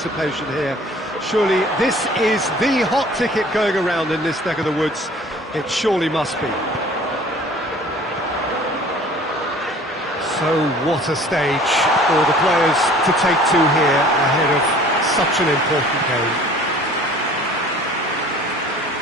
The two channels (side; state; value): both; normal; correlation 0.49